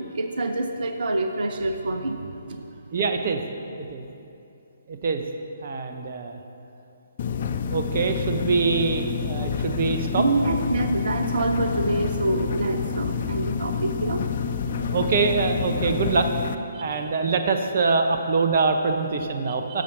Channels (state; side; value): inverted; both; correlation -0.65